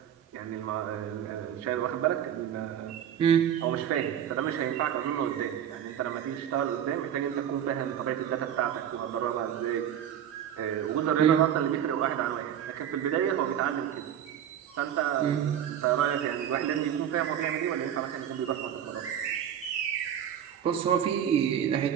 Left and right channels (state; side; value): quieter; left; 9.7 dB